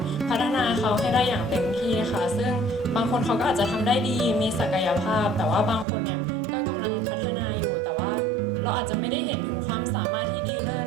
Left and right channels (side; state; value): left; drops out; at 5.9 s